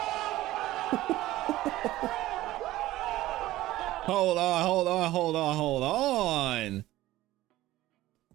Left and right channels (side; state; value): left; quieter; 16.2 dB